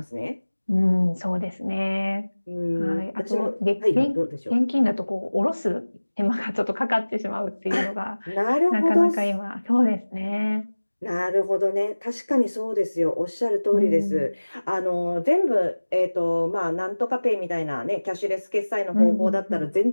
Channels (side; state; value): both; inverted; correlation -1.00